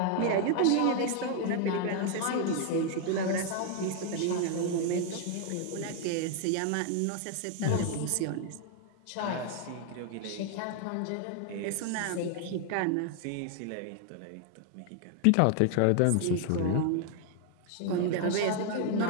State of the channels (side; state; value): both; different; correlation 0.00